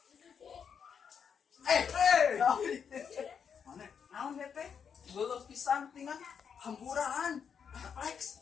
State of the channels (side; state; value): right; quieter; 7.0 dB